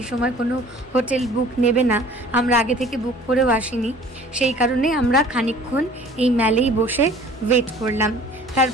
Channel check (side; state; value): both; normal; correlation 0.49